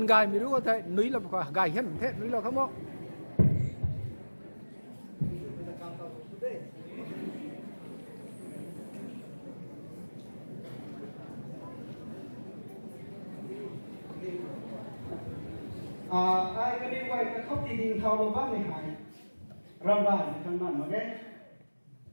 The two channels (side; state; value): both; inverted; correlation -1.00